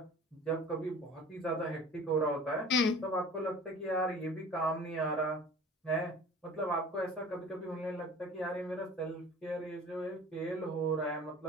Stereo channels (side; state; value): both; normal; correlation 0.43